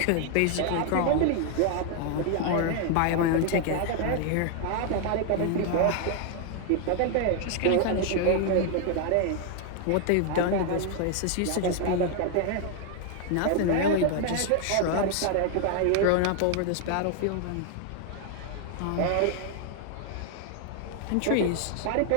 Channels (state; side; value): different; both; correlation 0.00